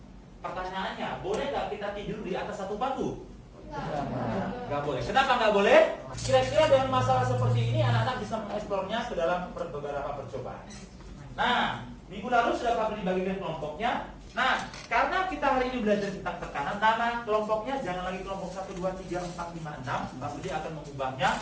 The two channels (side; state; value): both; identical; correlation 1.00